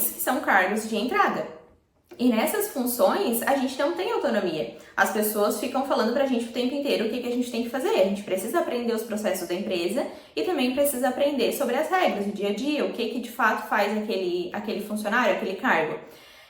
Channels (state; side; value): identical; both; correlation 1.00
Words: que são cargos de entrada. E nessas funções, a gente não tem autonomia. As pessoas ficam falando pra gente o tempo inteiro o que a gente tem que fazer. A gente precisa aprender os processos da empresa e também precisa aprender sobre as regras do dia a dia, o que de fato faz aquele funcionário, aquele cargo.